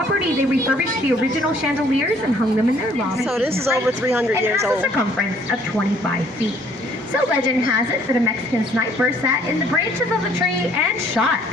they refurbished the original chandeliers and hung them in their lobby. So this is over 300 years old. old. It has a circumference of 25 feet. So legend has it that a Mexican sniper sat in the branches of the tree and shot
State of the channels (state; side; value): normal; both; correlation 0.61